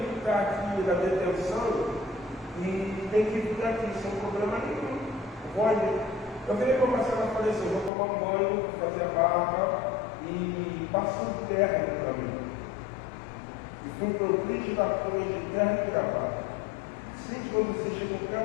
está aqui na detenção e tem que vir aqui, sem problema nenhum. Pode. Eu virei para a Marcela e falei assim, vou tomar um banho, vou fazer a barba e passei de terno para mim. E fui para o Cris da Cruz de terno e gravata. Sempre quando você chega em qualquer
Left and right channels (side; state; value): right; drops out; at 7.9 s